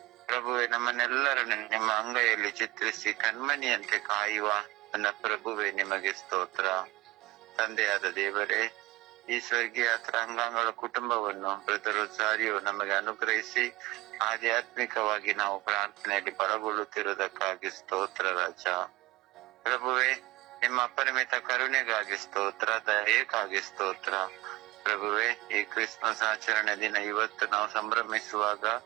ಪ್ರಭುವೆ, ನಮ್ಮನ್ನೆಲ್ಲರನ್ನು ನಿಮ್ಮ ಅಂಗೈಯಲ್ಲಿ ಚಿತ್ರಿಸಿ ಕಣ್ಮಣಿಯಂತೆ ಕಾಯುವ ನನ್ನ ಪ್ರಭುವೆ ನಿಮಗೆ ಸ್ತೋತ್ರ. ತಂದೆಯಾದ ದೇವರೇ, ಈ ಸ್ವರ್ಗೀಯ ಅಂಗಾಂಗಳ ಕುಟುಂಬವನ್ನು ಬ್ರದರ್ ಸಾರಿಯು ನಮಗೆ ಅನುಗ್ರಹಿಸಿ ಆಧ್ಯಾತ್ಮಿಕವಾಗಿ ನಾವು ಪ್ರಾರ್ಥನೆಯಲ್ಲಿ ಬಲಗೊಳ್ಳುತ್ತಿರುವುದಕ್ಕಾಗಿ ಸ್ತೋತ್ರ ರಾಜ. ಪ್ರಭುವೆ, ನಿಮ್ಮ ಅಪರಿಮಿತ ಕರುಣೆಗಾಗಿ ಸ್ತೋತ್ರ, ದಯೆಗಾಗಿ ಸ್ತೋತ್ರ. ಪ್ರಭುವೆ, ಈ ಕ್ರಿಸ್ಮಸ್ ಆಚರಣೆ ದಿನ ಇವತ್ತು ನಾವು ಸಂಭ್ರಮಿಸುವಾಗ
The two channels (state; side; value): quieter; left; 20.2 dB